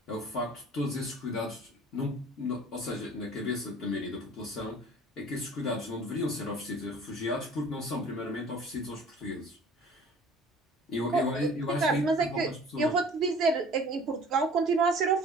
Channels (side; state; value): both; normal; correlation 0.48